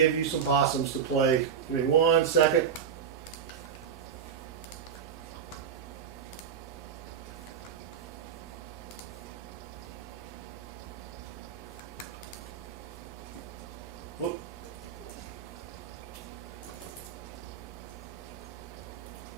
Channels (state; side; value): quieter; left; 7.4 dB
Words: you some possums to play. Give me 1 second. Whoop.